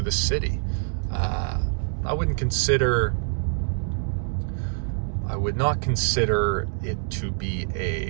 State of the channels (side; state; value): left; silent; 60 dB below the other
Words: city. I would not consider it to be